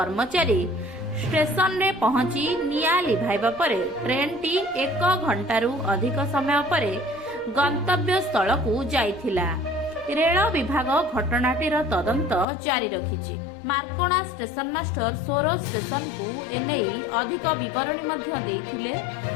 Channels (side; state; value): right; drops out; at 12.5 s